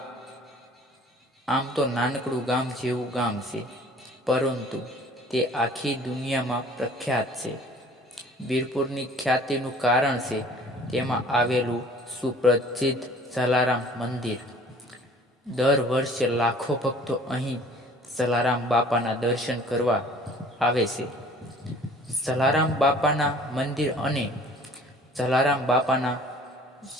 આમ તો નાનકડું ગામ જેવું ગામ છે, પરંતુ તે આખી દુનિયામાં પ્રખ્યાત છે. વીરપુરની ખ્યાતિનું કારણ છે તેમાં આવેલું સુપ્રસિદ્ધ જલારામ મંદિર. દર વર્ષે લાખો ભક્તો અહીં જલારામ બાપાના દર્શન કરવા આવે છે. જલારામ બાપાના મંદિર અને જલારામ બાપાના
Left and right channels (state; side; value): normal; both; correlation 0.51